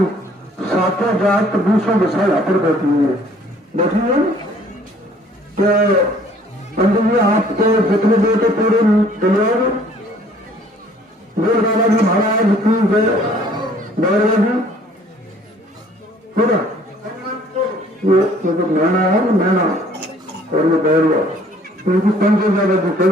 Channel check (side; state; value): both; normal; correlation 0.57